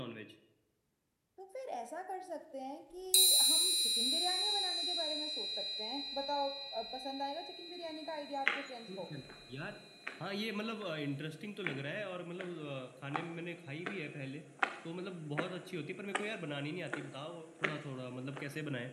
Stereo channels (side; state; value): both; identical; correlation 1.00